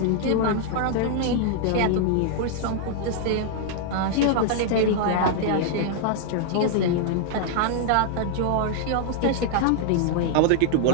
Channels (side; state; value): both; different; correlation -0.01